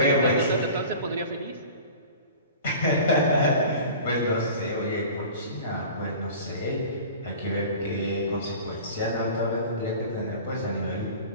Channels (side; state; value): both; inverted; correlation -0.40